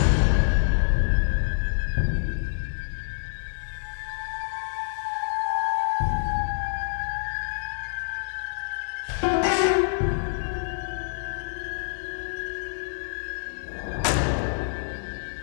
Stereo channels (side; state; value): right; silent; digital silence